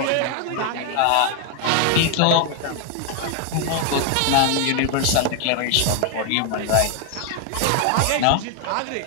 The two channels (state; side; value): different; both; correlation 0.01